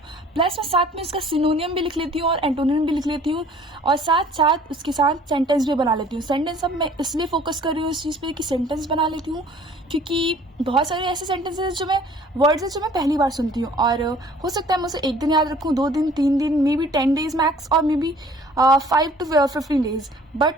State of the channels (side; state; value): both; normal; correlation 0.53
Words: प्लस मैं साथ में इसका सिनोनियम भी लिख लेती हूँ और एंटोनियम भी लिख लेती हूँ, और साथ साथ उसके साथ सेंटेंस भी बना लेती हूँ। सेंटेंस अब मैं इसलिए फोकस कर रही हूँ इस चीज़ पे कि सेंटेंस बना लेती हूँ, क्योंकि बहुत सारे ऐसे सेंटेंसेस जो मैं वर्ड्स हैं जो मैं पहली बार सुनती हूँ, और हो सकता है मुझे 1 दिन याद रखूँ, 2 दिन, 3 दिन, मे बी 10 डेज मैक्स, और may be 5 to 15 days,